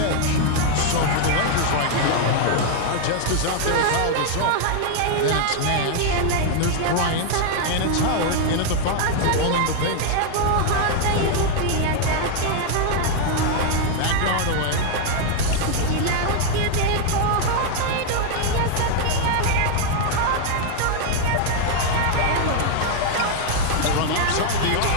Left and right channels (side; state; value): both; different; correlation 0.00